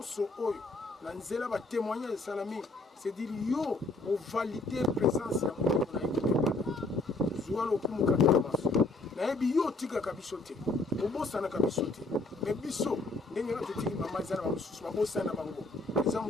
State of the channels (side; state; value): right; quieter; 3.1 dB